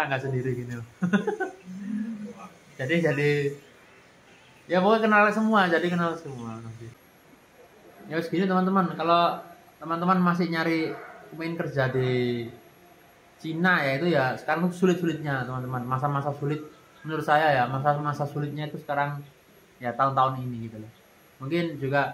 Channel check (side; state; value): both; identical; correlation 1.00